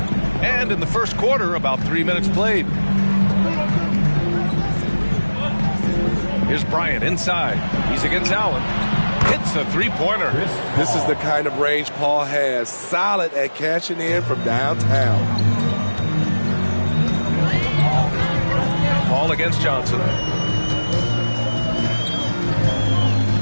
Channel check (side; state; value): both; inverted; correlation -1.00